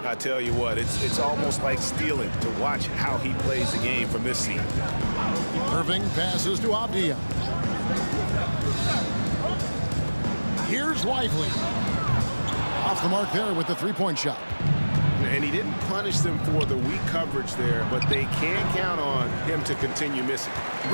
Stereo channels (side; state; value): both; inverted; correlation -1.00